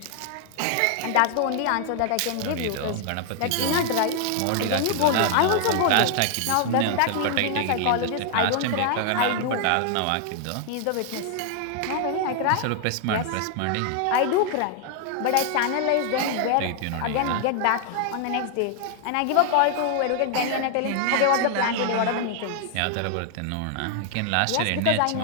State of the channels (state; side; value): different; both; correlation 0.00